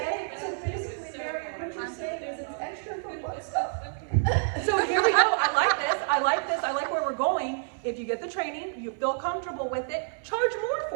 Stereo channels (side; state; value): left; silent; 59 dB below the other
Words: So basically, Mary, what you're saying is it's extra for butt stuff. So here we go. I like this. I like this. I like where we're going. If you get the training, you feel comfortable with it, charge more